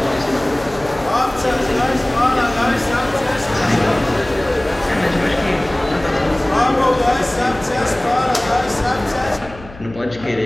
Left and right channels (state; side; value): noise; left; hum, 19 dB below the sound